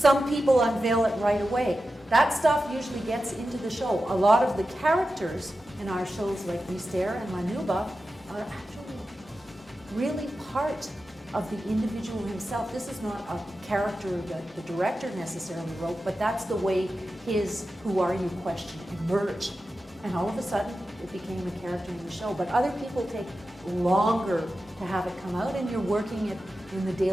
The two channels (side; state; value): both; normal; correlation 0.92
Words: people unveil it right away. That stuff usually gets into the show. A lot of the characters in our shows like Mystère and La Nuba are actually really part of the individual himself. This is not a character that the director necessarily wrote, but that's the way his "who are you" question emerged. And all of a sudden, it became a character in the show. But other people take longer to have it come out, and you're working it in the